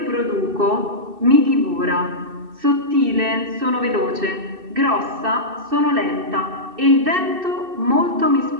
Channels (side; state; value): left; late; 2.6 ms